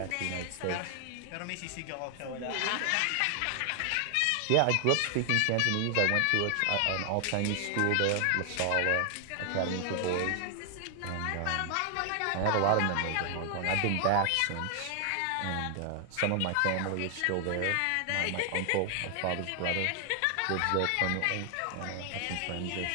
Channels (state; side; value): different; both; correlation 0.00